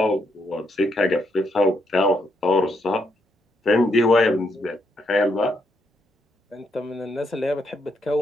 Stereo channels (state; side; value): normal; both; correlation 0.77